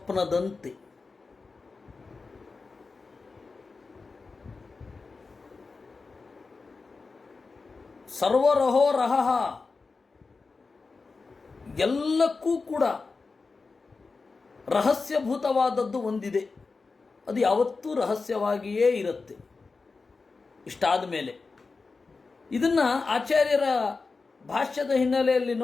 ಸರ್ವರಹೋ ರಹಃ, ಎಲ್ಲಕ್ಕೂ ಕೂಡ ರಹಸ್ಯಭೂತವಾದದ್ದು ಒಂದಿದೆ, ಅದು ಯಾವತ್ತೂ ರಹಸ್ಯವಾಗಿಯೇ ಇರುತ್ತೆ. ಇಷ್ಟಾದ ಮೇಲೆ ಇದನ್ನು ಆಚಾರ್ಯರ ಭಾಷ್ಯದ ಹಿನ್ನೆಲೆಯಲ್ಲಿ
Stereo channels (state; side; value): quieter; right; 4.2 dB